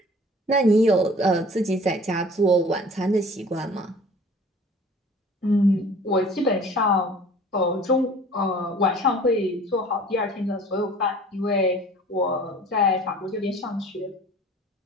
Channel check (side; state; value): both; normal; correlation 0.47